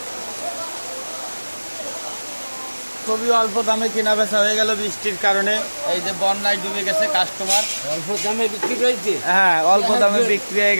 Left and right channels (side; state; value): both; inverted; correlation -1.00